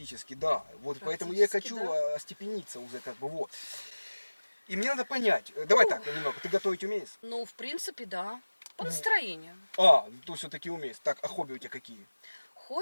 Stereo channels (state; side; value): inverted; both; correlation -1.00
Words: да. Вот поэтому я и Практически, хочу да. остепениться уже, как бы, вот. И мне надо понять, давай так, немного, ты готовить умеешь? Ну, в принципе, да. По настроению. А, то все-таки умеешь. Так, а хобби у тебя какие?